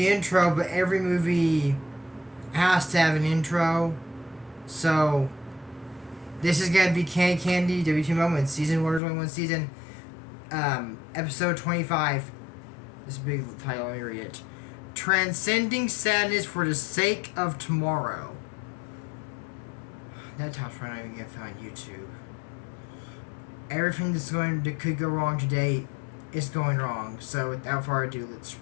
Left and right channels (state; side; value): drops out; right; at 9.0 s